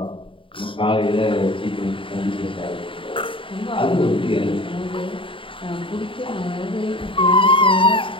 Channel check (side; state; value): right; late; 0.25 ms